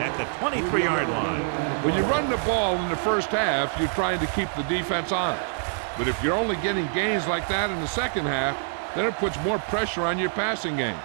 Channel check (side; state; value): left; silent; 61 dB below the other